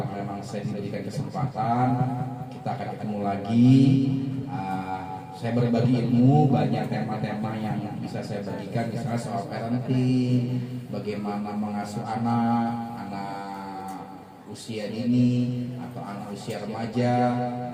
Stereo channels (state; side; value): identical; both; correlation 1.00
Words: memang saya diberikan kesempatan, kita akan ketemu lagi. Saya berbagi ilmu, banyak tema-tema yang bisa saya bagikan, misalnya soal parenting, bagaimana mengasuh anak usia dini atau anak usia remaja,